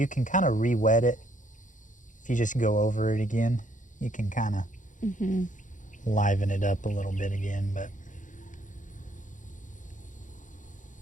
can kind of re-wet it. If you just go over it again, you can kind of liven it up a little bit again, but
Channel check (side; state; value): right; late; 0.37 ms